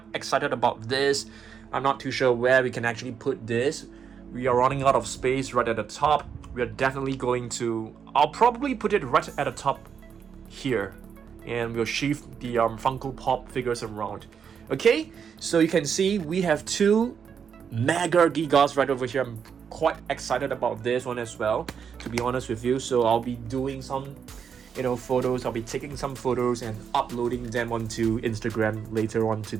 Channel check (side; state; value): left; quieter; 7.1 dB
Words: excited about this. I'm not too sure where we can actually put this. We are running out of space right at the top. We are definitely going to, I'll probably put it right at the top here, and we'll shift the Funko Pop figures around. Okay, so you can see we have two Mega Gigas right over here. I'm quite excited about this one as well, to be honest with you. So I'll be doing some photos. I'll be taking some photos and uploading them onto Instagram later on